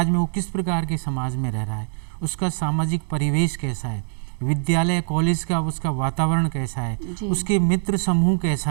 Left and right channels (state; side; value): silent; left; digital silence